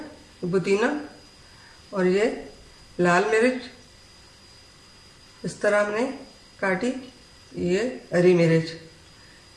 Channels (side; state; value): both; identical; correlation 1.00